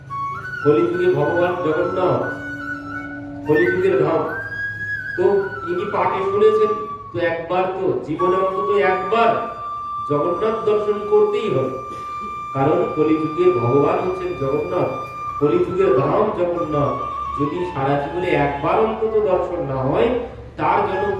কলিযুগে ভগবান জগন্নাথ, কলিযুগের ধাম। তো ইনি পাঠে শুনেছেন, তো একবার তো জীবনে অন্তত একবার জগন্নাথ দর্শন করতেই হবে, কারণ কলিযুগের ভগবান হচ্ছেন জগন্নাথ, কলিযুগের ধাম জগন্নাথ। যদি সারা জীবনে একবার অন্তত দর্শন না হয় তার জন্য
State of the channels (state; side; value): identical; both; correlation 1.00